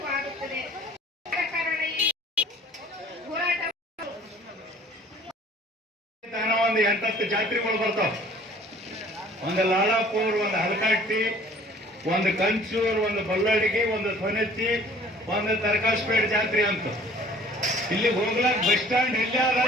ಆಗುತ್ತದೆ. ಕಾರಣ ಈ ಹೋರಾಟ ಒಂದು 8-10 ಜಾತ್ರೆಗಳು ಬರ್ತಾವ. ಒಂದು ಲಾಲಾಪುರ್, ಒಂದು ಹಲಕಟ್ಟಿ, ಒಂದು ಕಂಚೂರ್, ಒಂದು ಬಲ್ಲಡಿಗೆ, ಒಂದು ಸೊನೆಚ್ಚಿ, ಒಂದು ತರಕಾಸ್ಪೇಟ್ ಜಾತ್ರೆ ಅಂತ. ಇಲ್ಲಿ ಹೋಗ್ಲಾಕ ಬಸ್ ಸ್ಟ್ಯಾಂಡ್ ಇಲ್ಲೇ ಅದ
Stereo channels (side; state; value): both; normal; correlation 0.52